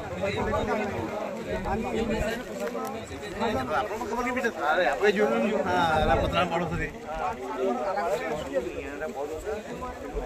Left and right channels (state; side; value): identical; both; correlation 1.00